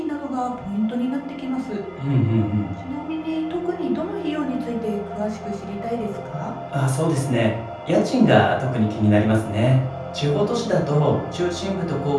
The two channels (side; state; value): both; identical; correlation 1.00